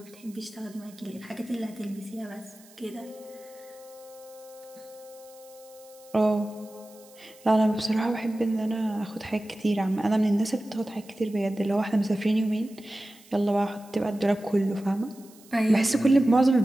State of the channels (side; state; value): right; noise; hiss, 24 dB below the sound